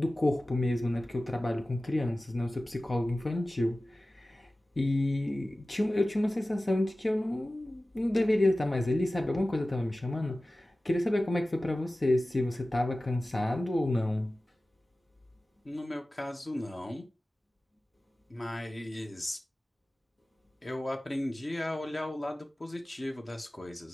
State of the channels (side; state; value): both; normal; correlation 0.96